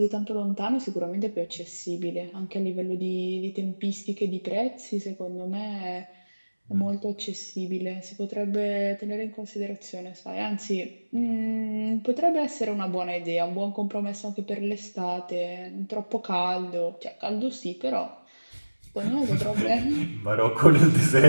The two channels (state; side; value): inverted; both; correlation -1.00